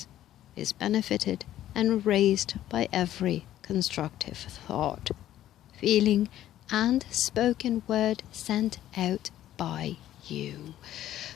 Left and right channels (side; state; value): right; quieter; 12.7 dB